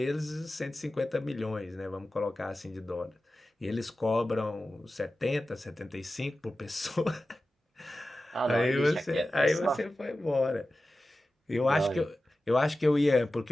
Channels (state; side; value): normal; both; correlation 0.94